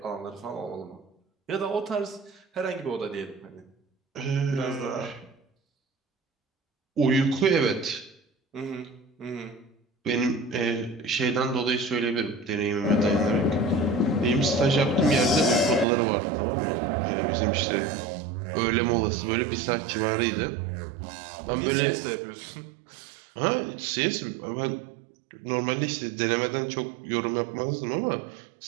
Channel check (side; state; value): left; drops out; at 15.9 s